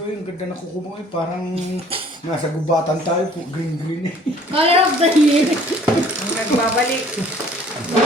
yung ganda na kuko mo eh. Parang nasa gubatan tayo. Green eh. Color of the year. Ang nagbabalik.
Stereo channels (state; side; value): normal; both; correlation 0.55